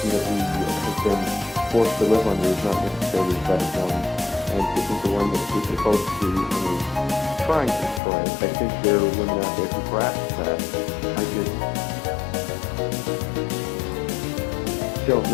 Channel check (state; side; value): drops out; right; at 8.0 s